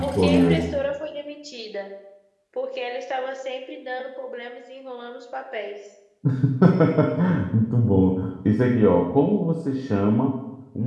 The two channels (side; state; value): both; identical; correlation 1.00